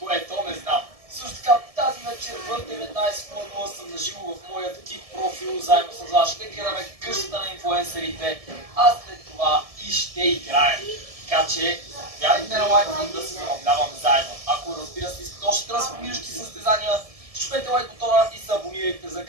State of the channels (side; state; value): left; late; 1.7 ms